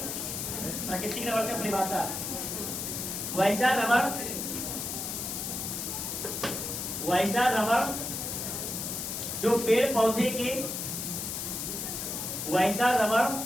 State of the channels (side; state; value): left; noise; hiss, 4 dB below the sound